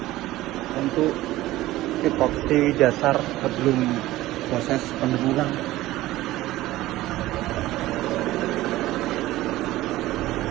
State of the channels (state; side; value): quieter; left; 16.6 dB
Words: Untuk epoksi dasar sebelum proses pendeburan.